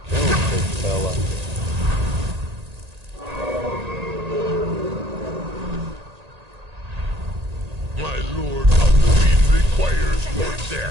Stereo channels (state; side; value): late; left; 1.8 ms